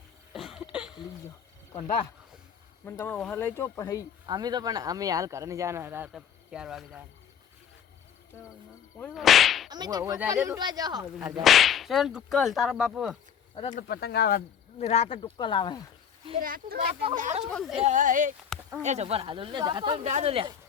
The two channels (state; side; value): quieter; right; 8.2 dB